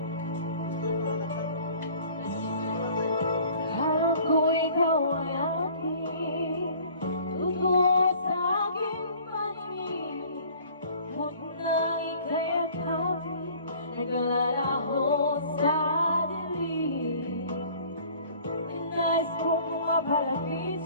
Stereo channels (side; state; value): both; inverted; correlation -0.50